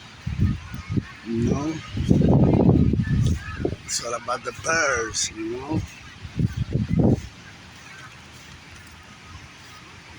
You know, it's all about the birds. You know,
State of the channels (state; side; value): identical; both; correlation 1.00